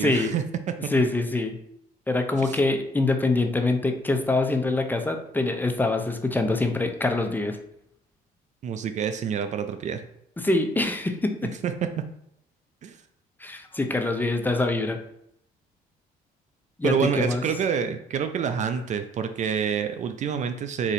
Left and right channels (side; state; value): both; normal; correlation 0.65